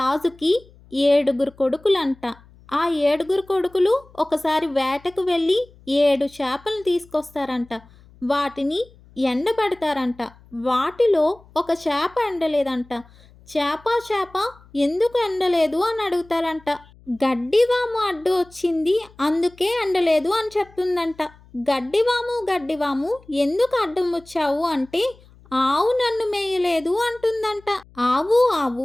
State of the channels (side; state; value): left; noise; hum, 26 dB below the sound